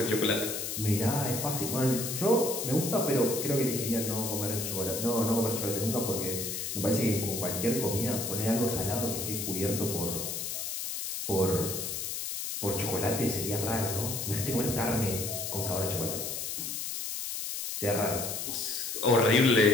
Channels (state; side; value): noise; left; hiss, 4 dB below the sound